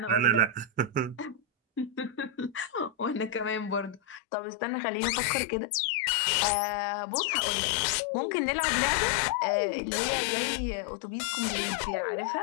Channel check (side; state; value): right; drops out; at 4.2 s